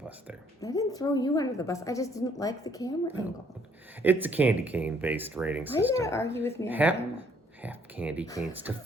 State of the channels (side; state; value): both; normal; correlation 0.64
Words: there. I didn't throw you under the bus. I just didn't like the camera angle. It's a candy cane based rating Why you system. gotta argue with me on camera? Half candy canes to